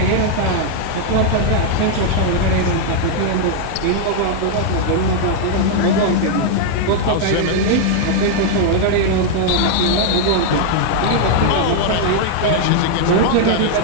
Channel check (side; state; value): both; different; correlation 0.00